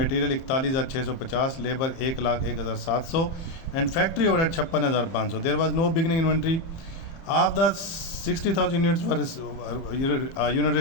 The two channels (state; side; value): late; right; 30 ms